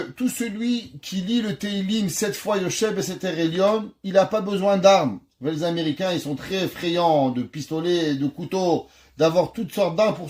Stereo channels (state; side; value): identical; both; correlation 1.00